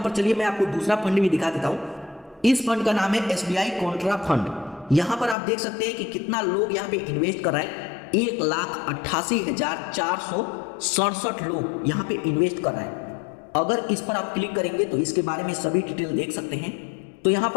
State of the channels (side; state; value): right; drops out; at 5.4 s